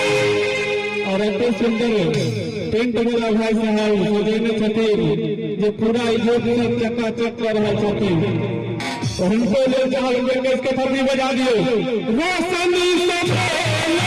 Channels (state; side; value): identical; both; correlation 1.00